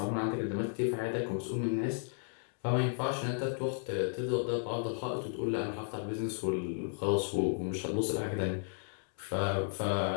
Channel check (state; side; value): silent; right; digital silence